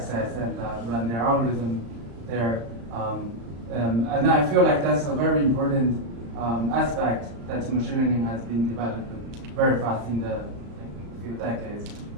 and run their algorithm there. And I feel like that's a very important aspect that machine learning has been developed very fast in the few decades.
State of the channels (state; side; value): late; left; 35 ms